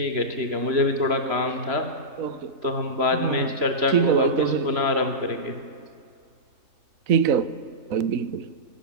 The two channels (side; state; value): left; late; 3.0 ms